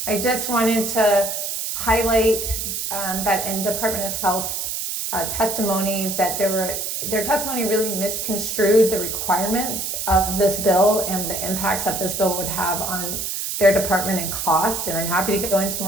I just wanted to highlight that in Department of Health's testimony that their testimony really misconstrued the requirements of this bill and the impacts that this bill would have on their department and cost. And I'm happy to go into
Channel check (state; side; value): noise; right; hiss, 3 dB below the sound